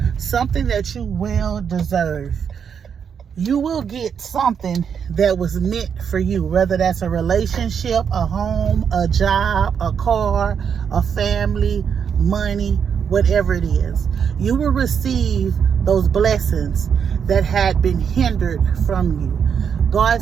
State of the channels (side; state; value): left; quieter; 7.3 dB